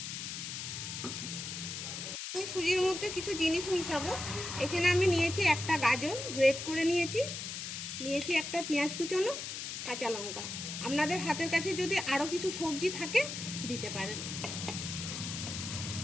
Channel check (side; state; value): left; noise; hiss, 6 dB below the sound